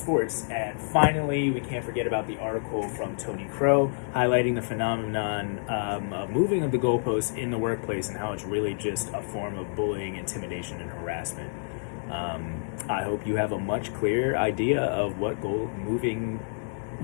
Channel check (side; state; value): right; silent; 59 dB below the other